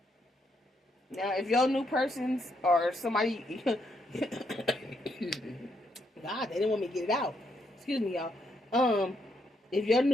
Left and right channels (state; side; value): normal; both; correlation 0.76